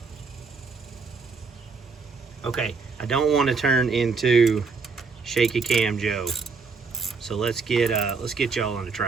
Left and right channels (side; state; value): left; quieter; 4.7 dB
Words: Okay, I don't want to turn into Shaky Cam Joe. So let's get y'all on the